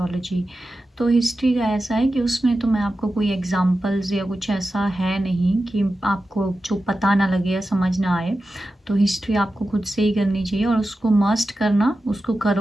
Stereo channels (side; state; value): both; normal; correlation 0.92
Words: तो हिस्ट्री का ऐसा है कि उसमें तो मैं आपको कोई एग्जांपल्स या कुछ ऐसा है नहीं कि आपको जो पता ना लगे या समझ ना आए। तो हिस्ट्री आपको खुद से ही करनी चाहिए और उसको मस्ट करना, उसको